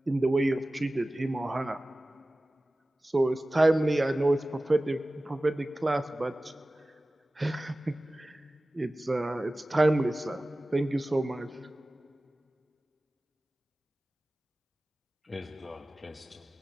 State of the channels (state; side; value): normal; both; correlation 0.97